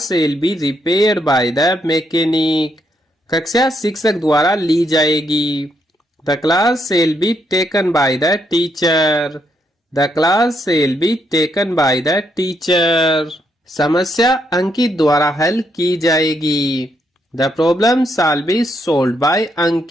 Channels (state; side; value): normal; both; correlation 0.76